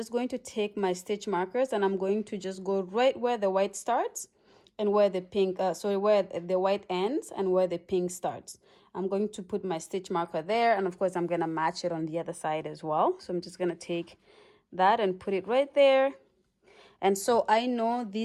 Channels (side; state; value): both; identical; correlation 1.00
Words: going to take my stitch markers and I'm going to just go right where the white starts and where the pink where the white ends and where the pink starts. I'm going to put my stitch marker there, and of course I'm gonna match it on the other side as well. So I'm just gonna take that and put it right there. And so I know